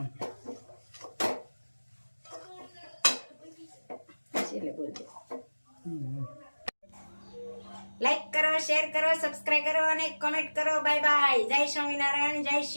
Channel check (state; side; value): inverted; both; correlation -1.00